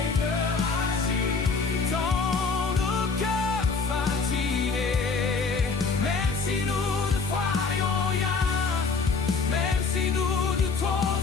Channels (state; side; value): quieter; right; 4.6 dB